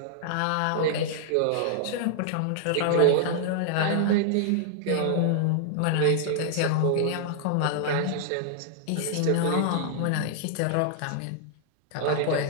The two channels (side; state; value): both; different; correlation -0.01